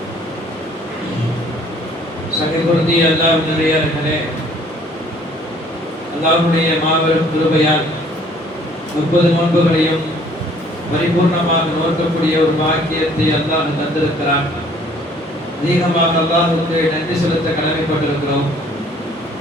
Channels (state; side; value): normal; both; correlation 0.58